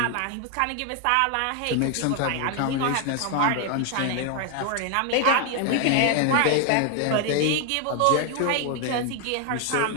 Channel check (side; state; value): both; different; correlation 0.01